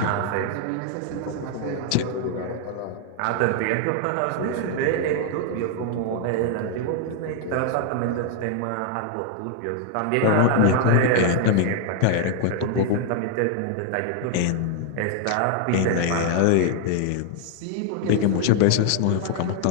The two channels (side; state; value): both; different; correlation 0.00